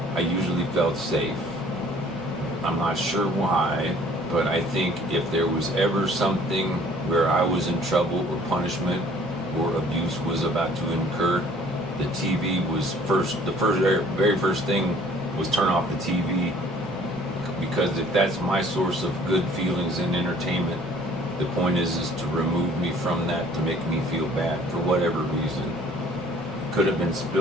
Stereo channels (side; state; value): both; normal; correlation 0.55